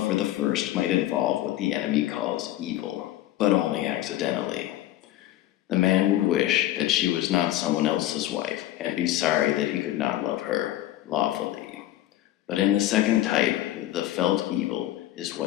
for the first might involve what the enemy calls evil, but only accidentally. The man would wish that she was not someone else's wife, and be sorry that he could not love her lawfully. But in the second type, the felt evil is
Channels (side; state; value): right; quieter; 14.3 dB